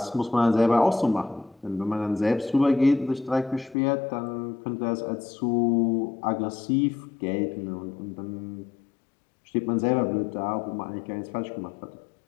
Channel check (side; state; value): right; drops out; at 3.8 s